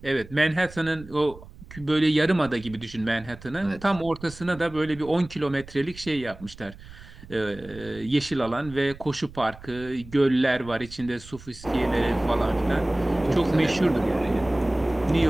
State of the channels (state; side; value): noise; right; rumble, 18 dB below the sound